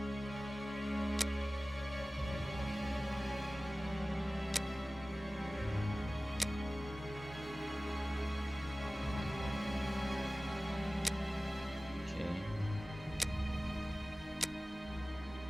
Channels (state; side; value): normal; both; correlation 0.97